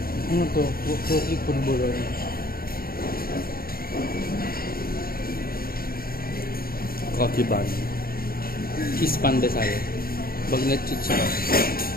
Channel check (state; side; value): late; right; 0.43 ms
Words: Ano to? Cookie pulburon. Coffee bun. Cheese pandesal. Bagnet chicha.